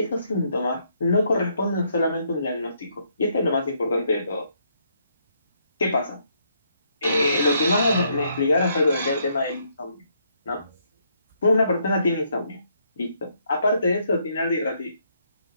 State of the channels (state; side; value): inverted; both; correlation -0.73